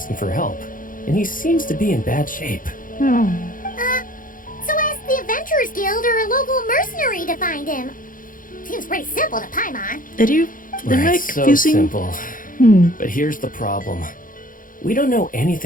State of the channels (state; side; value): late; right; 0.40 ms